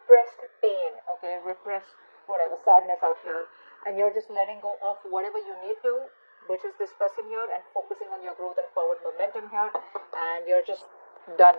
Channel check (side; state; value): both; inverted; correlation -1.00